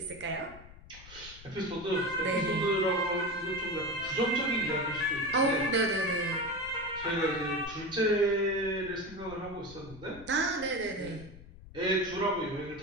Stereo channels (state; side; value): noise; left; rumble, 18 dB below the sound